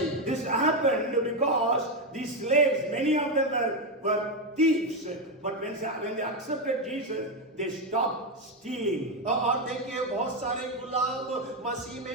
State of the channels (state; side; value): normal; both; correlation 0.08